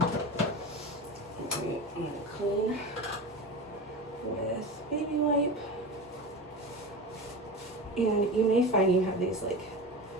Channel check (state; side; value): normal; both; correlation 0.27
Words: I'm gonna clean with baby wipe. And you may find you have these like